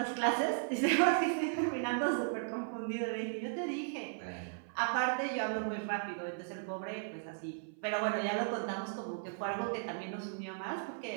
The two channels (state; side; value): silent; left; 54 dB below the other